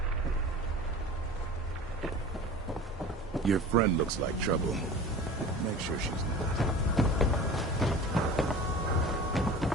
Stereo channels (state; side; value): normal; both; correlation 0.38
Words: Your friend looks like trouble. Make sure she's not.